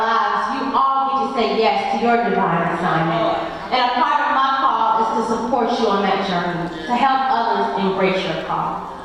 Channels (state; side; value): identical; both; correlation 1.00